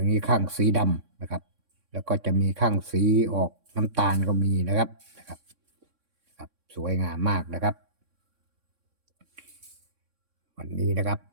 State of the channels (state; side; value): late; left; 3.6 ms